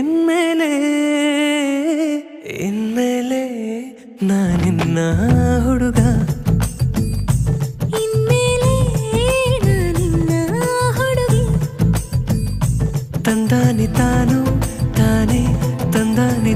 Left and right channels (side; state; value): both; identical; correlation 1.00